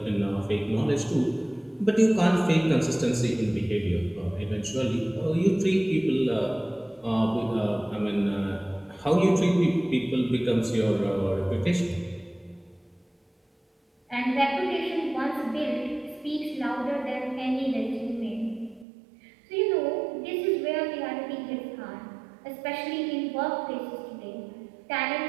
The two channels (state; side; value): drops out; left; at 18.9 s